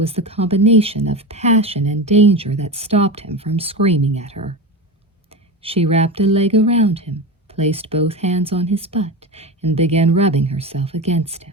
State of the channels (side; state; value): both; normal; correlation 0.22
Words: the combination of passion and danger that stopped him from screaming at her. She wrapped a leg around him, placed both hands on his butt, and began rubbing herself against